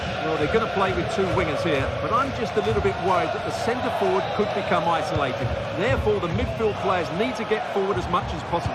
Well, they're going to play with two wingers here, but I'm just a little bit worried that the centre-forward could become isolated. Therefore, the midfield players need to get forward as much as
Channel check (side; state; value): both; identical; correlation 1.00